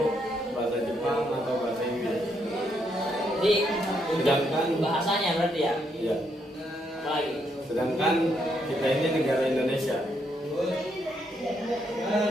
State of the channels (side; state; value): both; normal; correlation 0.76